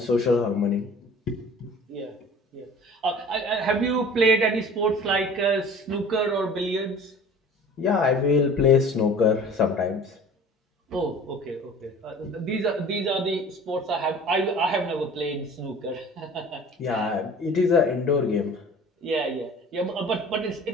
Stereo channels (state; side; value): normal; both; correlation 0.44